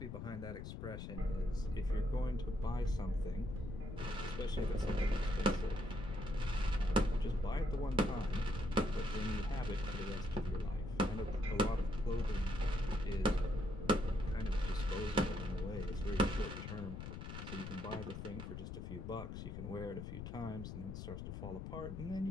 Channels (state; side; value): noise; left; rumble, 7 dB below the sound